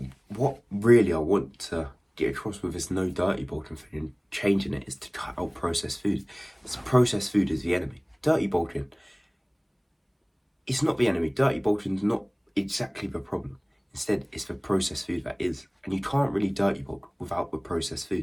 what really I want to get across with this no dirty bolting thing and changing it is to cut out processed food. This processed food is the enemy. Dirty bolting, it's not the enemy. Dirty bolting is not exactly the problem. Instead, it's the processed food that is. And you can't really dirty bulk without the processed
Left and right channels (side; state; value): both; identical; correlation 1.00